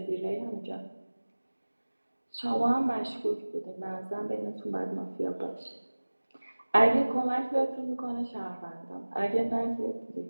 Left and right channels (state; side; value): inverted; both; correlation -1.00